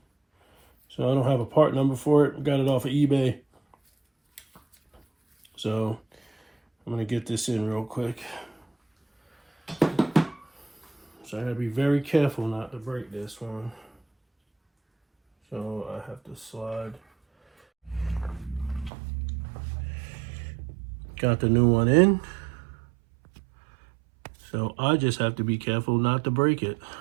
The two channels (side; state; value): left; drops out; at 18.9 s